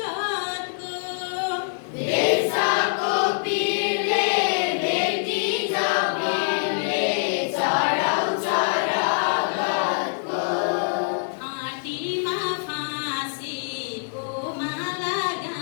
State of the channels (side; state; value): right; silent; 62 dB below the other